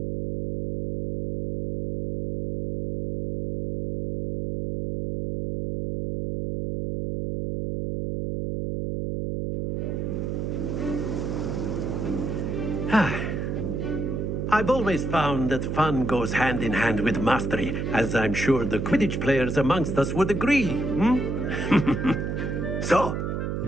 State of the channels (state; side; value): noise; right; hum, 2 dB below the sound